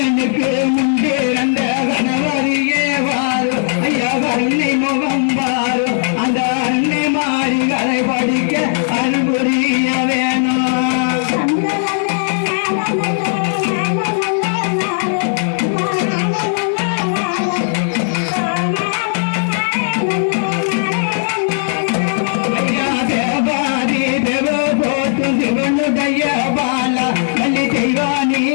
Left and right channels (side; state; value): right; silent; digital silence